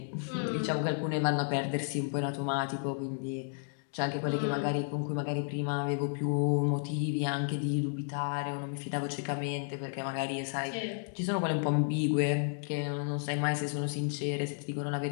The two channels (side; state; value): right; silent; digital silence